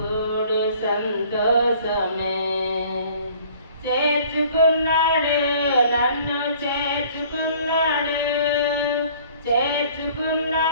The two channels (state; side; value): inverted; both; correlation -0.53